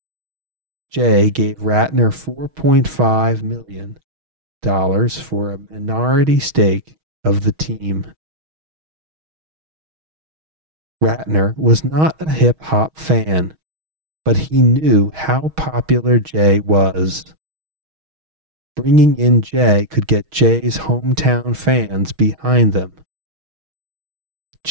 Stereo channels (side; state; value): left; late; 6.3 ms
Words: Jay gave Ratner $4.5 million for a minority stake of the team. Ratner was not a hip-hop fan, but he knew how popular Jay was. Bringing in Jay could get Jay's hometown fans behind them.